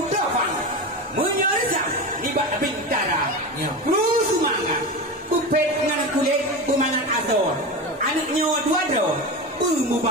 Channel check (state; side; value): normal; both; correlation 0.23